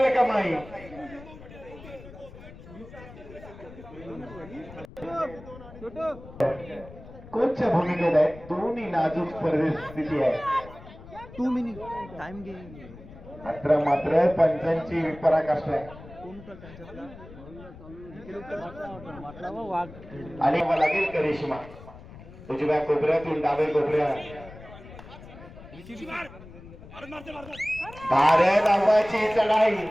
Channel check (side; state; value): left; noise; rumble, 17 dB below the sound